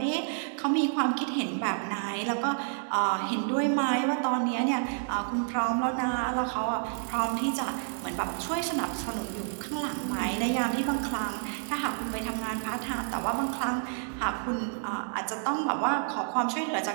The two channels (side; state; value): left; silent; digital silence